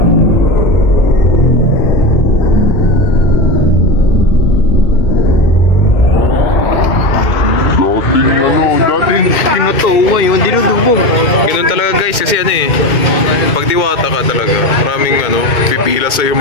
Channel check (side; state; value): right; late; 2.2 ms